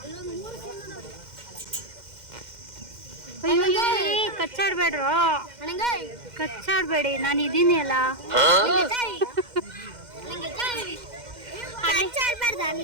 ಕಚ್ಚಾಡ್ಬೇಡ್ರು, ಕಚ್ಚಾಡ್ಬೇಡಿ, ನಾನು ಇದೀನಿ ಅಲ್ಲ.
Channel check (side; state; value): left; late; 2.1 ms